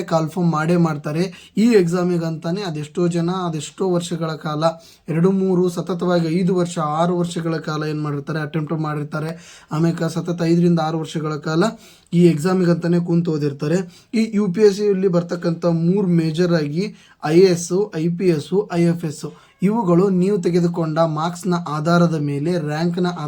ಕಾಲ್ಫಾರ್ಮ್ ಮಾಡ್ತಾರೆ. ಈ ಎಕ್ಸಾಮಿಗಂತಾನೆ ಅದೆಷ್ಟೋ ವರ್ಷಗಳ ಕಾಲ 2-3 ಸತತವಾಗಿ 5 ವರ್ಷ 6 ವರ್ಷಗಳ ಕಾಲ ಏನು ಮಾಡಿರ್ತಾರೆ, ಅಟೆಂಪ್ಟ್ ಮಾಡಿರ್ತಾರೆ. ಆಮೇಲೆ ಸತತ 5-6 ವರ್ಷಗಳ ಕಾಲ ಈ ಎಕ್ಸಾಮಿಗಂತಾನೆ ಕೂತು ಓದಿರ್ತಾರೆ. ಈ UPSC ಬರ್ತಕ್ಕಂಥ 3 ಮೇಜರ್ ಆಗಿ IAS, IPS, IFS ಇವುಗಳು ನೀವು ತೆಗೆದುಕೊಂಡ ಮಾರ್ಕ್ಸ್ನ ಆಧಾರದ ಮೇಲೆ, ರ್ಯಾಂಕ್ನ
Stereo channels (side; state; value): both; identical; correlation 1.00